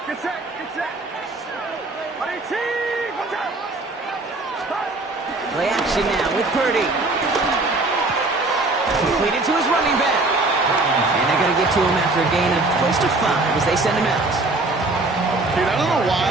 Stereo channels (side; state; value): left; quieter; 3.1 dB